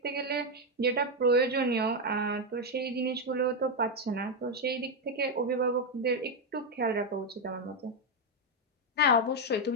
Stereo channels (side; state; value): both; normal; correlation 0.04